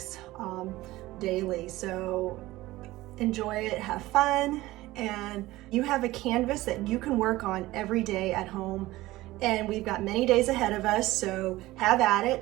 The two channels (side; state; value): left; quieter; 17.9 dB